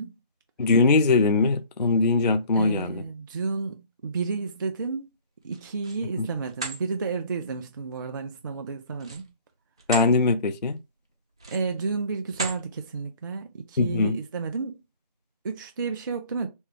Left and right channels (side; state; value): both; inverted; correlation -0.51